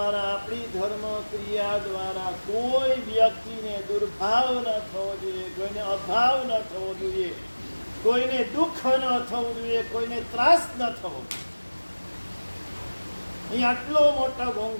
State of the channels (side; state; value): both; inverted; correlation -1.00